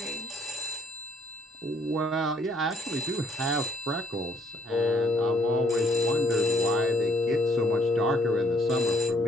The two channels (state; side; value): normal; both; correlation 0.66